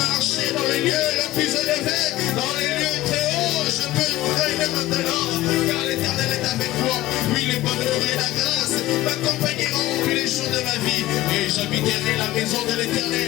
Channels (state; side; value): quieter; right; 16.6 dB